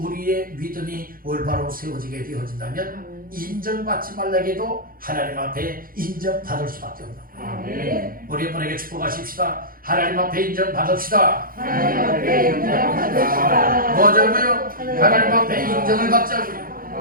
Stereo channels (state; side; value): late; left; 0.42 ms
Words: 믿음이 올바로 세워지게 되어진다면 인정받지 말라게도 하나님 앞에 인정받을 수밖에 없는 거예요. 우리 분에게 축복하십시다. 하나님 앞에 인정받읍시다. 뭐자고요? 하나님 앞에 인정을 받자고요.